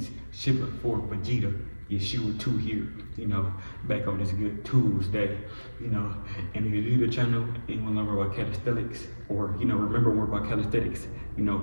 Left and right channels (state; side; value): inverted; both; correlation -1.00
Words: Shipper for Vegeta, Yeshua 2 here, back on this good Tuesday, and if you're new to the channel and you want to learn more about calisthenics, or, remember more about calisthenics,